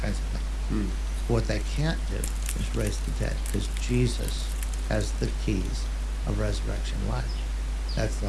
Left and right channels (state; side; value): identical; both; correlation 1.00